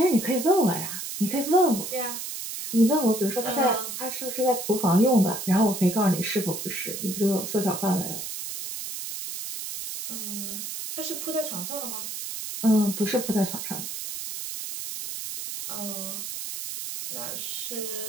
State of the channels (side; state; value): right; noise; hiss, 6 dB below the sound